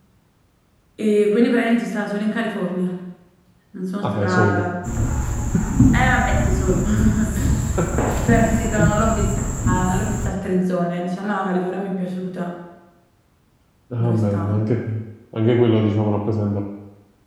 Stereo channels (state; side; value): identical; both; correlation 1.00